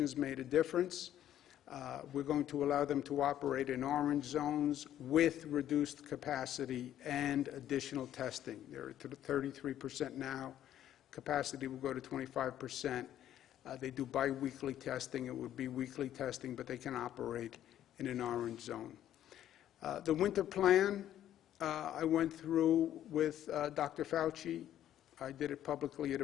made a difference. We're going to allow them to operate in orange zones with reduced capacity and additional testing. They're at 33% now. Capacity will go to 25%. They do biweekly testing. It would be weekly testing, but they can operate in an orange zone. The winter plan, I went through with Dr. Fauci. I did it publicly at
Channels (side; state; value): right; quieter; 11.6 dB